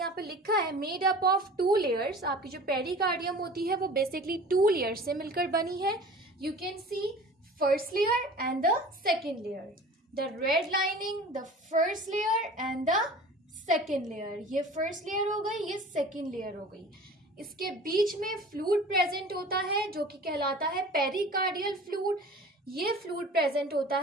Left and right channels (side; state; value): both; normal; correlation 0.42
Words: पे लिखा है made up of two layers. आपकी जो पेरिकार्डियम होती है वो बेसिकली टू लेयर्स से मिलकर बनी है. You can see first layer and the second layer, the red lining, the first layer and the second layer. ये फर्स्ट लेयर हो गई, ये सेकेंड लेयर हो गई. इसके बीच में फ्लूइड प्रेजेंट होता है जो कि कहलाता है पेरिकार्डियल फ्लूइड. ये फ्लूइड प्रेजेंट होता